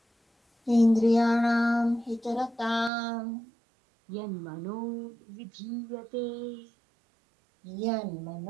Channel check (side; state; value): left; drops out; at 2.9 s